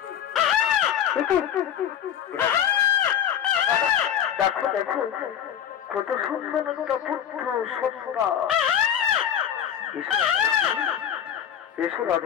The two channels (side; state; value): right; quieter; 9.5 dB